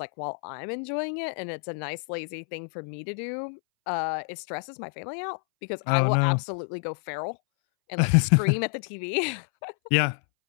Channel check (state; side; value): silent; right; 59 dB below the other